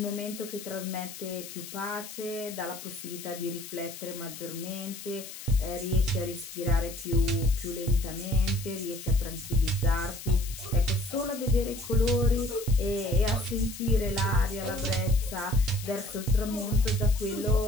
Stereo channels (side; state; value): left; noise; hiss, 12 dB below the sound